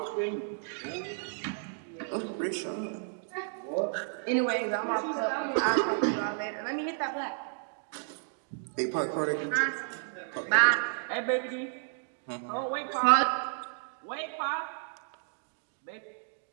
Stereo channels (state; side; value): silent; left; digital silence